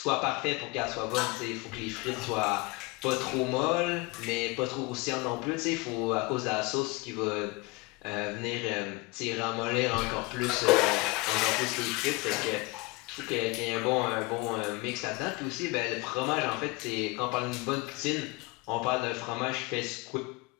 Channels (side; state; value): right; quieter; 24.7 dB